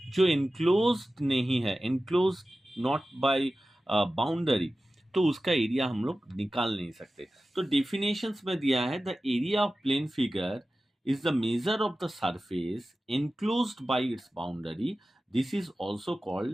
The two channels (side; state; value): both; normal; correlation 0.95